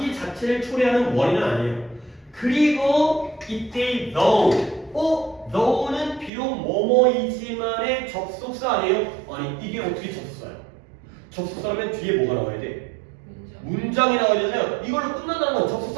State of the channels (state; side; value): drops out; left; at 6.3 s